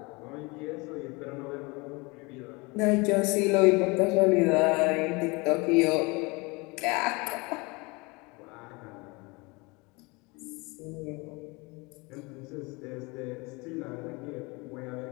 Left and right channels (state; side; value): quieter; right; 26.3 dB